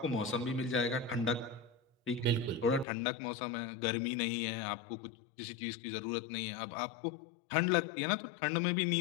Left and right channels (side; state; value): right; drops out; at 2.9 s